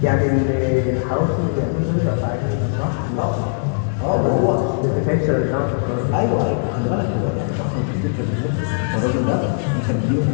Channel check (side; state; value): right; silent; 66 dB below the other